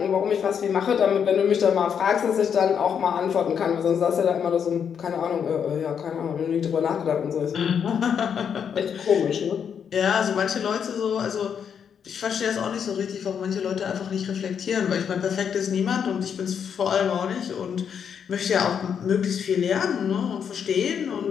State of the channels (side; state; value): right; quieter; 7.6 dB